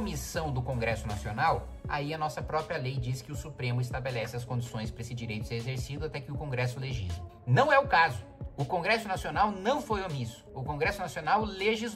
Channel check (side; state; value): both; identical; correlation 1.00